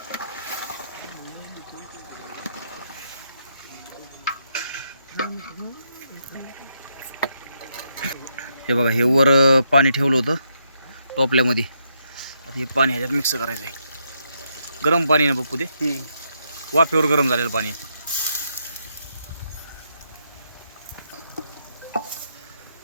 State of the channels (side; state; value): both; inverted; correlation -0.78